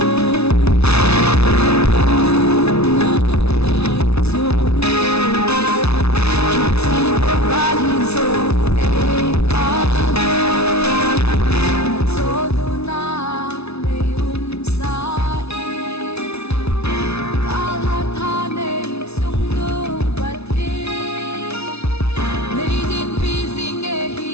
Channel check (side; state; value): right; late; 0.80 ms